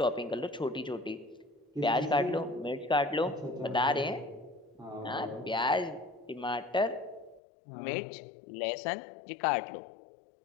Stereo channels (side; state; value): right; drops out; at 7.4 s